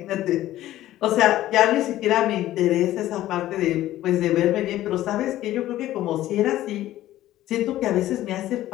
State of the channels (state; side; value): quieter; right; 14.3 dB